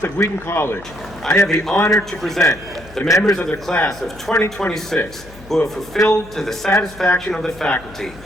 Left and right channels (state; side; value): noise; left; hum, 20 dB below the sound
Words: of Wheaton College, I have the honor to present the members of the class of 2026 who have fulfilled to the satisfaction of the faculty